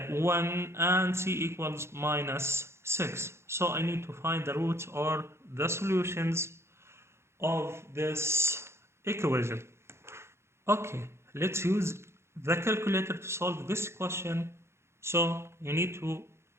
and c equals minus 6. So I need to find the roots or the solutions of this equation. Okay, let's use the calculator to solve this question. So you need to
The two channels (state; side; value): late; left; 0.13 ms